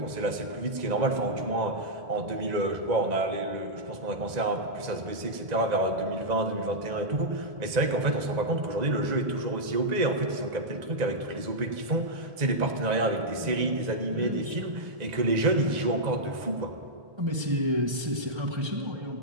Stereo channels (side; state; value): left; late; 1.9 ms